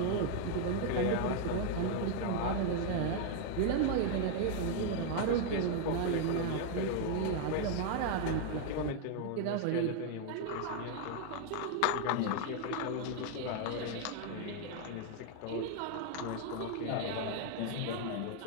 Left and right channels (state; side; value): different; both; correlation 0.00